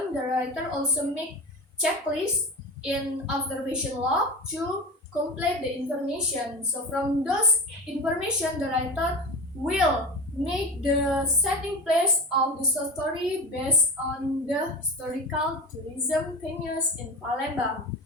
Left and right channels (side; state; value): both; normal; correlation 0.25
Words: the writer also make checklist in observation log to complete the information. So from those information, the writer will make the setting place of the story based on the historical tourism venues in Palembang.